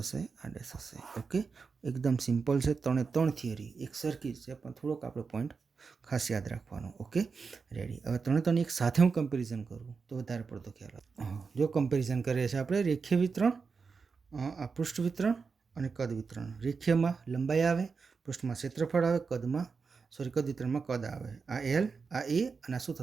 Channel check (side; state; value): left; quieter; 5.1 dB